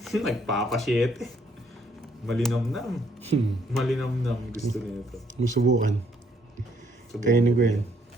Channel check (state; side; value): normal; both; correlation 0.68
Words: Nagpapasyete. Malinamnam. Malinamnam gusto niya ito. Musubukan. Kainin ko yan.